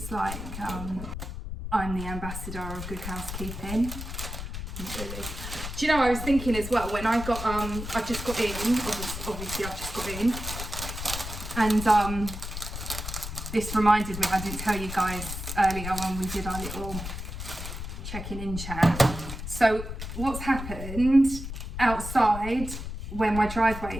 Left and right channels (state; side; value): noise; left; rumble, 7 dB below the sound